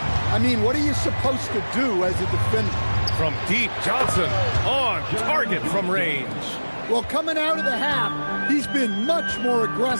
I mean, what are you supposed to do as a defender? From deep, Johnson on target from range. Well, coming out of the half, he's been much more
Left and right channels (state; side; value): inverted; both; correlation -1.00